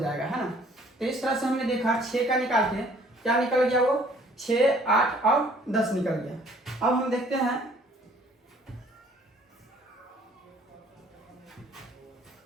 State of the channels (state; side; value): normal; both; correlation 0.58